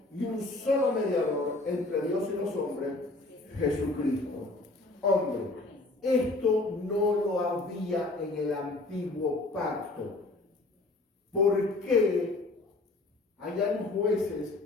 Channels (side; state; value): right; quieter; 3.0 dB